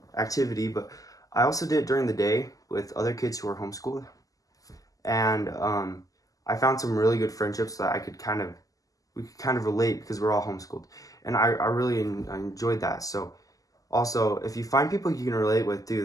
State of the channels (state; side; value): late; right; 0.17 ms